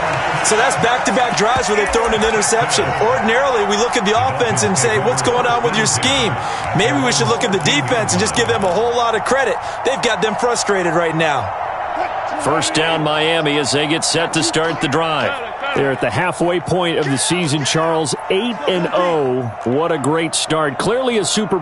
So that's back-to-back drives where they've thrown an interception. Ordinarily, we look at the offense and say, what's going on with your scheme? Maybe we should look at the defense and just give them a whole lot of credit. They've got them frustrated right now. First down, Miami, as they get set to start the drive. They're at the halfway point of the season, Charles. 8-0. What a great start. Clearly a Super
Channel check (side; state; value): both; identical; correlation 1.00